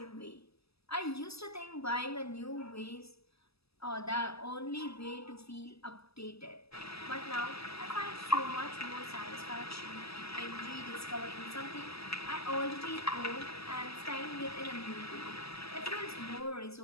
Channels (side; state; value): right; late; 0.78 ms